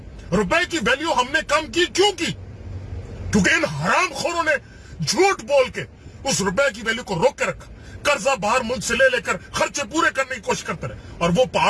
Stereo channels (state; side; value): identical; both; correlation 1.00